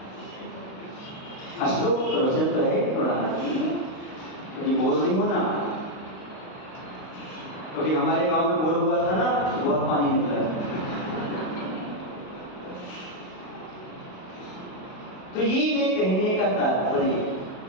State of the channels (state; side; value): late; right; 38 ms